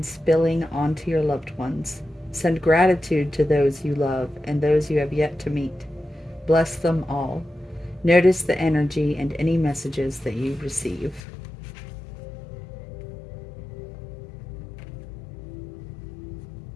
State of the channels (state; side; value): drops out; right; at 11.2 s